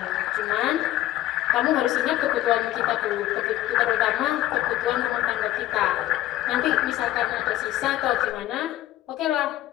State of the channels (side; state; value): right; quieter; 14.4 dB